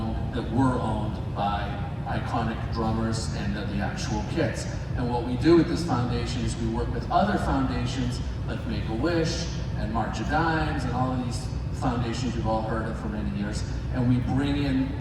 were owned by iconic drummers and the actual kits. And what we do with this foundation is we work with other foundations like Make-A-Wish and March of Dimes and all of these foundations you've all heard of for many years, and we bring in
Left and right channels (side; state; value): both; identical; correlation 1.00